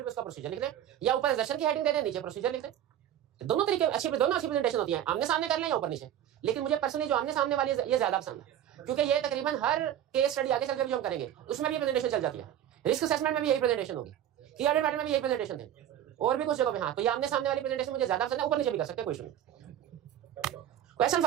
पे उसका प्रोसीजर लिख दें, या ऊपर असर्शन की हेडिंग दे दें, नीचे प्रोसीजर लिख दें। दोनों तरीके अच्छी, दोनों अच्छी प्रेजेंटेशन होती है, आमने सामने कर लें या ऊपर नीचे। लेकिन मुझे पर्सनली जो आमने सामने वाली ये ज्यादा पसंद है, क्योंकि ये तकरीबन हर केस स्टडी आगे चलकर भी जो हम करेंगे उसमें भी प्रेजेंटेशन चल जाती है। रिस्क असेसमेंट में भी यही प्रेजेंटेशन होगी, की ऑडिट मैटर में भी यही प्रेजेंटेशन थे, और भी कुछ जगह पे। हाँ, तो ये आमने सामने वाली प्रेजेंटेशन मुझे ज्यादा पसंद है, ऊपर नीचे भी कर सकते हैं, कोई इशू नहीं। Question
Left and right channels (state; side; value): quieter; left; 10.9 dB